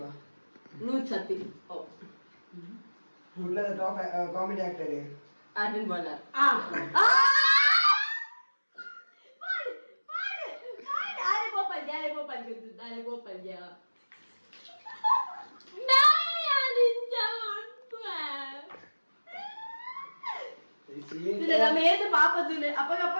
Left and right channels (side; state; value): both; inverted; correlation -1.00